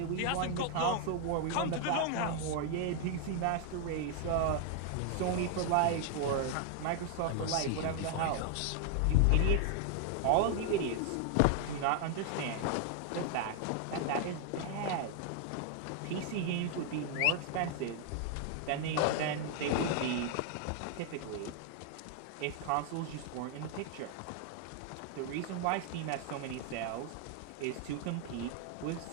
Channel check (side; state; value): both; different; correlation 0.00